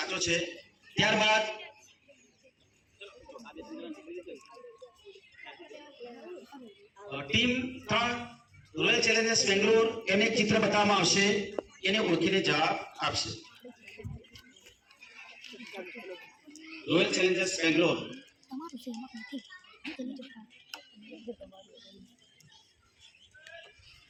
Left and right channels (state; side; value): identical; both; correlation 1.00